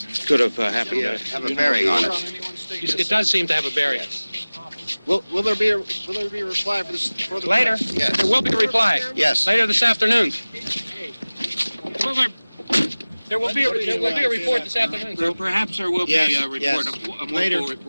Could have happened. Have a bearing on it. It does seem to have a bearing. Will there be a reply for this? Later? Yes. There will be a reply. Yes. Later this afternoon. There will be a report this afternoon. Perhaps there will be a report, yes. a more Later. full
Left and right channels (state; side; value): inverted; both; correlation -0.99